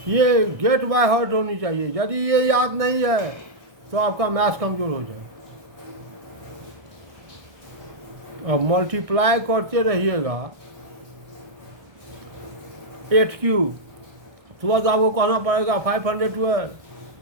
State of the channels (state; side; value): late; left; 1.6 ms